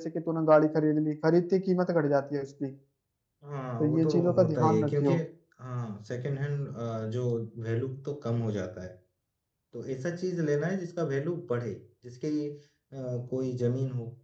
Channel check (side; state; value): both; identical; correlation 1.00